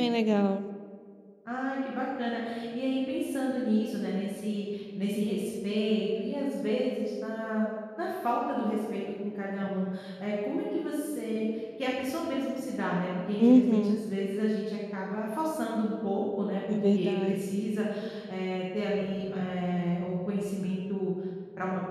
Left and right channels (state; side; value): identical; both; correlation 1.00